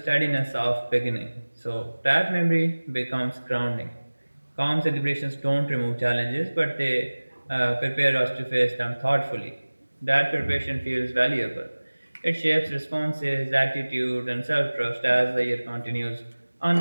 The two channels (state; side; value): inverted; both; correlation -1.00